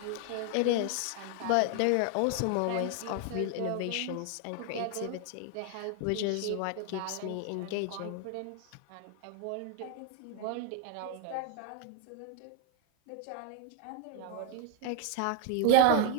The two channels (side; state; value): both; different; correlation 0.00